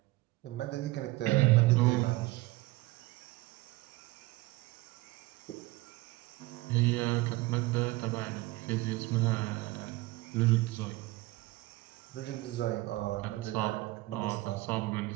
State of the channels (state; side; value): quieter; left; 20.2 dB